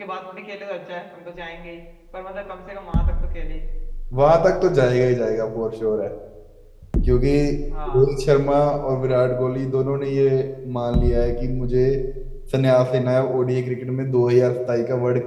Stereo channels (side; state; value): both; identical; correlation 1.00